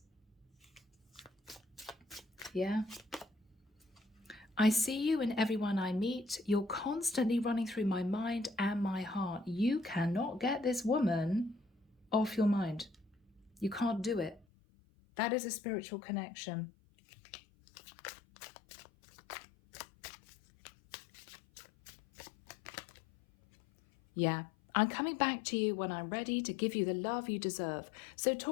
Yeah. I see you in everyone I meet. You're constantly running through my mind and my heart. You cannot get this woman off your mind. You can't do it. That is a spiritual connection. Yeah. I'm coming back to you when I'm ready to give you the love you deserve. So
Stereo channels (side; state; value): right; drops out; at 14.5 s